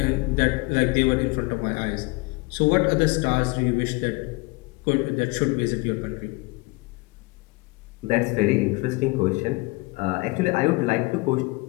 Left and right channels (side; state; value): right; quieter; 26.1 dB